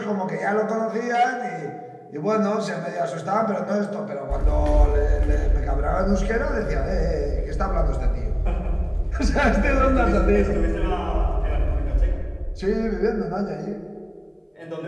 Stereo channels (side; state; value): both; identical; correlation 1.00